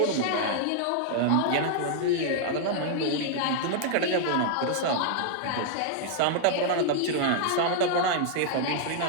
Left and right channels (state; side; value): different; both; correlation -0.01